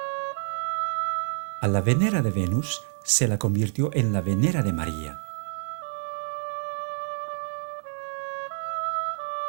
A la Venera de Venus se la convirtió en la Venera de María.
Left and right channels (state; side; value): silent; left; digital silence